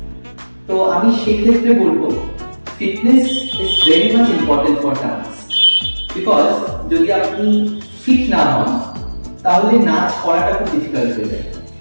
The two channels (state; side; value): inverted; both; correlation -1.00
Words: তো আমি সেক্ষেত্রে বলবো fitness is very much important for dance, because যদি আপনি ফিট না হন তাহলে নাচ করাটা খুব ডিফিকাল্ট হয়ে যায়।